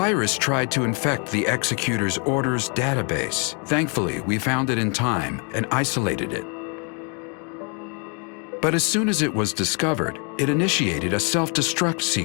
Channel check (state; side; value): quieter; right; 36.5 dB